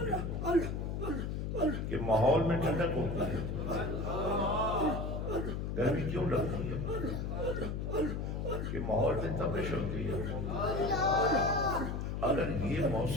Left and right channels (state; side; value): noise; left; hum, 3 dB below the sound